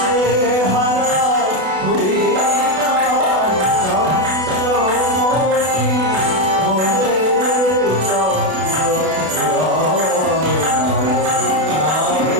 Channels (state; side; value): late; left; 32 ms